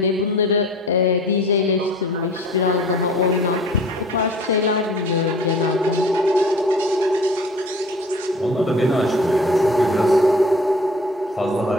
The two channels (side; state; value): both; normal; correlation 0.46